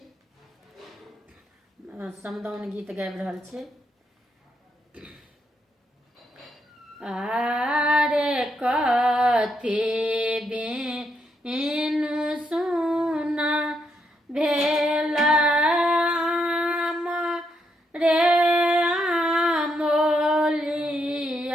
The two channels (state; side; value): normal; both; correlation 0.79